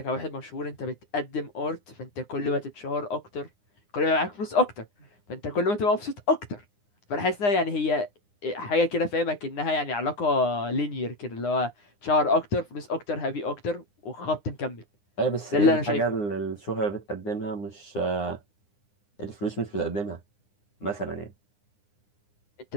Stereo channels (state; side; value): late; right; 9.8 ms